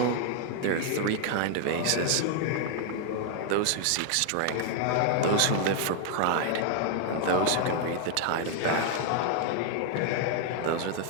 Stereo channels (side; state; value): both; different; correlation 0.00